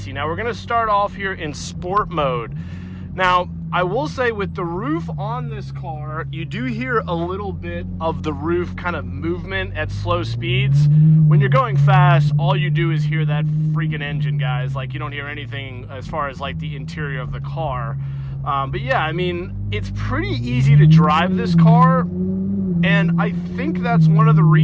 Now we're going to start off here in sport mode. Now I will say with the roof on this car, you do hear a little bit of the roof kind of movement at slow speeds. When you're going fast, all you do is hear that freaking engine, guys. Like, you don't hear anything as far as like the interior of the car. But yeah, I mean, it's pretty easy to drive this car, and I think that's one of the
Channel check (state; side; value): identical; both; correlation 1.00